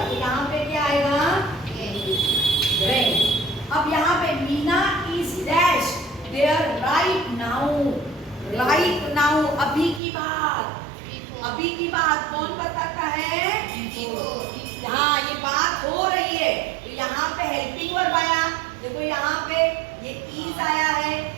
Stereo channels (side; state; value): left; drops out; at 10.0 s